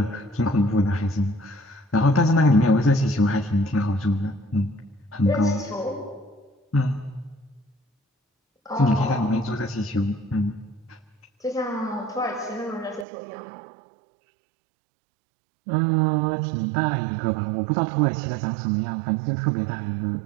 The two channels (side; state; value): left; drops out; at 13.1 s